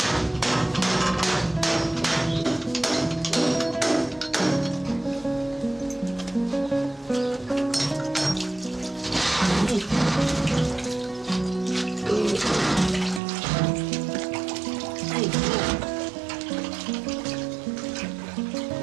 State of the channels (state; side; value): drops out; left; at 13.2 s